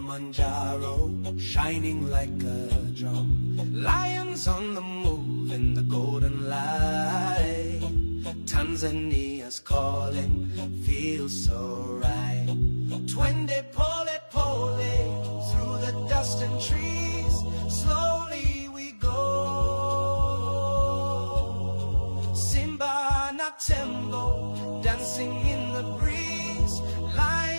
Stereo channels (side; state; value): both; inverted; correlation -1.00